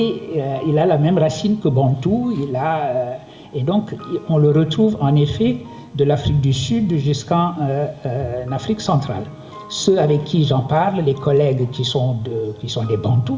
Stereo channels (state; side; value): identical; both; correlation 1.00